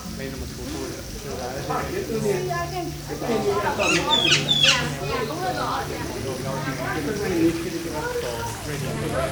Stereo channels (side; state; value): both; identical; correlation 1.00